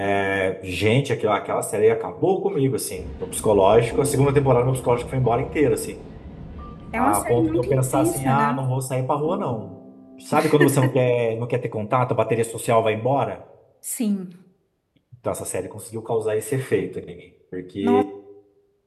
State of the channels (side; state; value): both; identical; correlation 1.00